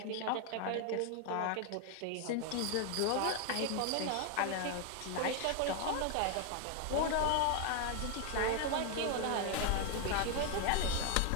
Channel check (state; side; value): different; both; correlation 0.01